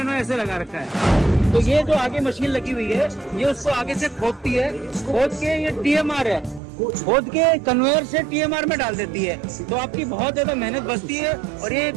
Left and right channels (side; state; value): left; drops out; at 6.6 s